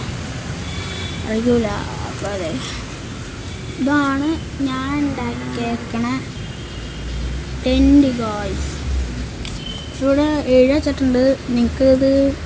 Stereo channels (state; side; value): identical; both; correlation 1.00